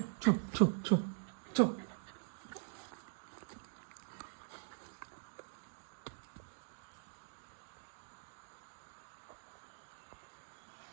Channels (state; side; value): silent; left; digital silence